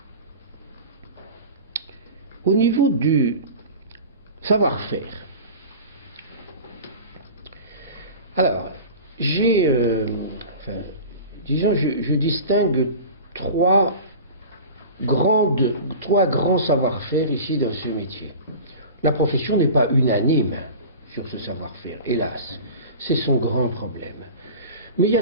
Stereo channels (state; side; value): inverted; both; correlation -0.35